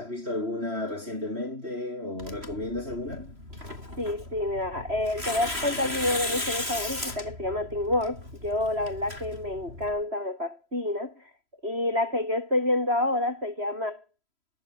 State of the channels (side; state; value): left; late; 3.0 ms